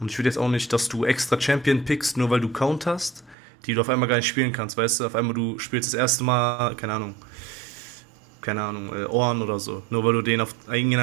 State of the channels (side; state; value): left; drops out; at 3.4 s